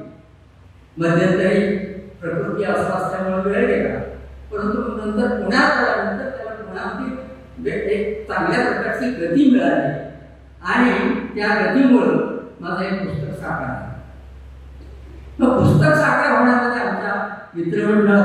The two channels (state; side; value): identical; both; correlation 1.00